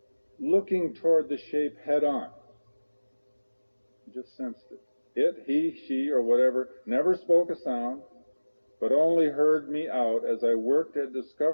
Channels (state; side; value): inverted; both; correlation -1.00